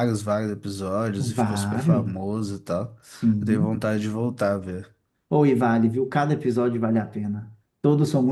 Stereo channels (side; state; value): both; identical; correlation 1.00